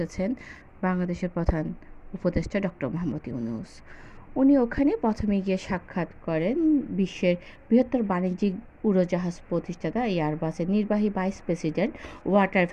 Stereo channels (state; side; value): identical; both; correlation 1.00